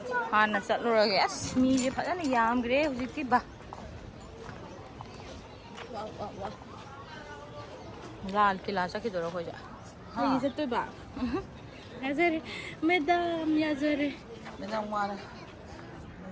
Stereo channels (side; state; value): both; identical; correlation 1.00